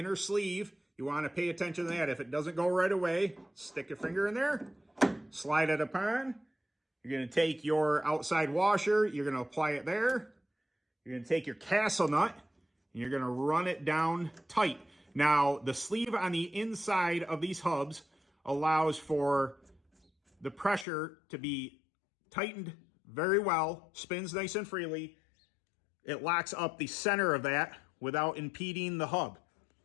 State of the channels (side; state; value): right; drops out; at 20.9 s